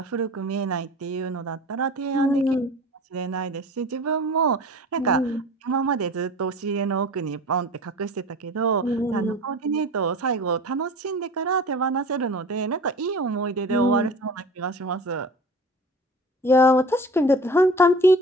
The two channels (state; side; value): normal; both; correlation 0.39